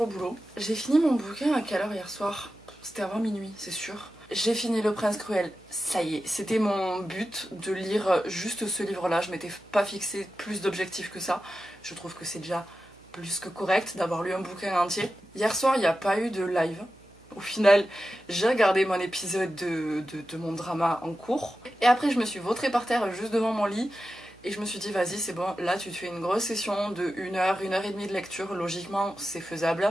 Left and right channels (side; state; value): right; noise; hum, 27 dB below the sound